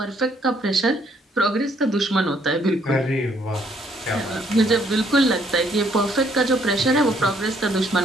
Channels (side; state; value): both; normal; correlation 0.67